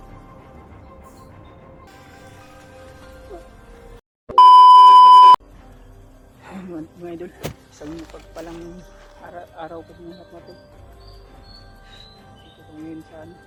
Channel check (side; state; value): both; identical; correlation 1.00